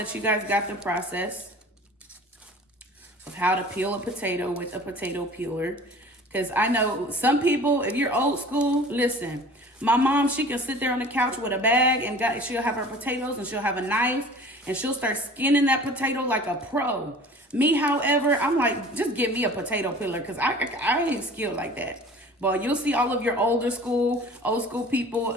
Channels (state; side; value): normal; both; correlation 0.44